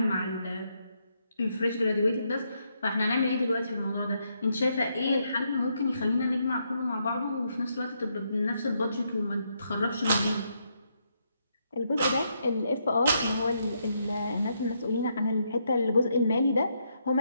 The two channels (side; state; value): both; inverted; correlation -0.77